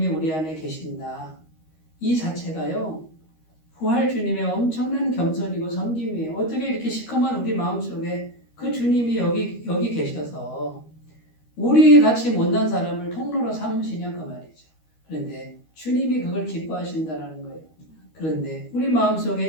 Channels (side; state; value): right; late; 13 ms